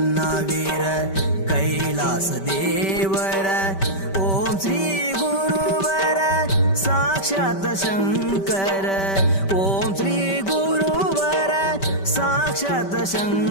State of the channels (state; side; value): late; right; 5.2 ms